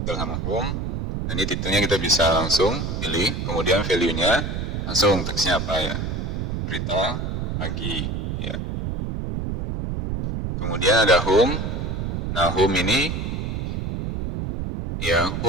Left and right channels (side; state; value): right; noise; rumble, 3 dB below the sound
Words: Title sama home. Nah ini titelnya kita bisa langsung pilih. Kemudian value-nya langsung teksnya apa ya. Berita pagi ya. Kemudian ada home. Nah home ini ya,